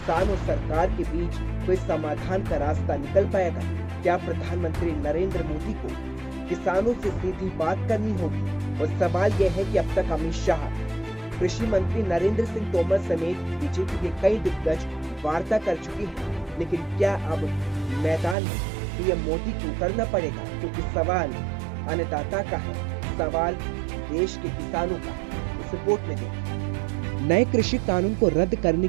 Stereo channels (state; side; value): drops out; left; at 18.4 s